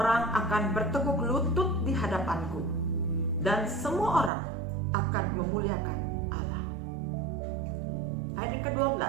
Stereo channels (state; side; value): drops out; left; at 4.3 s